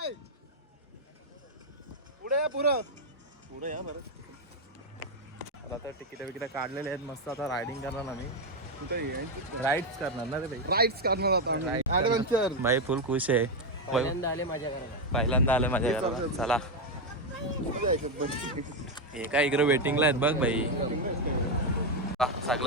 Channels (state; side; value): normal; both; correlation 0.06